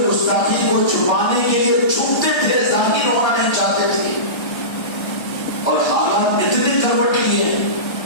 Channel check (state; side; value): late; right; 1.3 ms